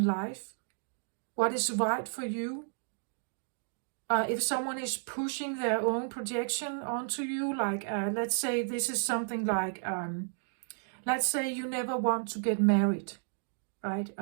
life, what is right for you. If someone is pushing their own projection onto you, like let's say this is something like, let's say you never want to get married, right?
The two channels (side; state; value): left; silent; digital silence